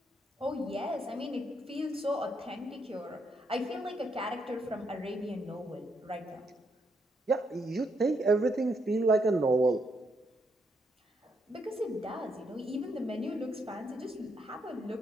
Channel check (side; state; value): both; normal; correlation 0.76